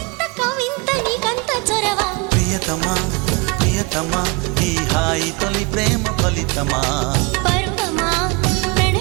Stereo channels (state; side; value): quieter; left; 28.9 dB